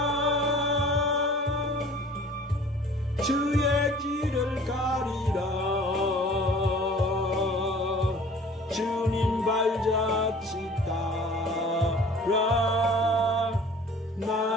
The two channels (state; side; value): normal; both; correlation 0.47